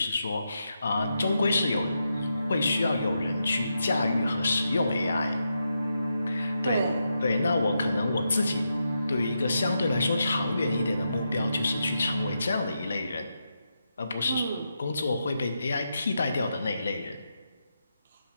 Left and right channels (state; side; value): inverted; both; correlation -0.85